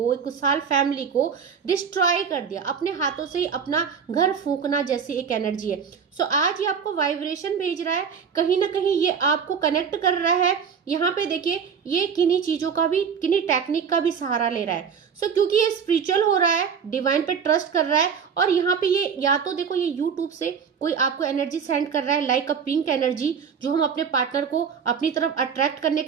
एक खुशहाल फैमिली को डिस्ट्रॉय कर दिया, अपने हाथों से ही अपना घर फूंकना जैसी एक एनर्जी है। सो आज ये आपको वाइब्रेशन भेज रहा है, कहीं ना कहीं ये आपको कनेक्ट कर रहा है। यहाँ पे देखिए, ये किन्हीं चीजों का भी, किन्हीं टेक्निक का भी सहारा ले रहा है। सो क्योंकि ये स्पिरिचुअल हो रहा है, डिवाइन पे ट्रस्ट कर रहा है, और यहाँ पे ये या तो देखो, ये यूट्यूब से कोई आपको एनर्जी सेंड कर रहा है, लाइक अ पिंक एनर्जी, जो हम अपने पार्टनर को अपनी तरफ अट्रैक्ट करने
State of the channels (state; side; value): quieter; left; 6.7 dB